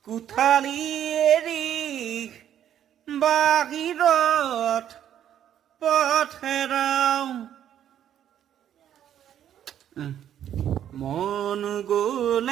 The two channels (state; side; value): quieter; left; 10.3 dB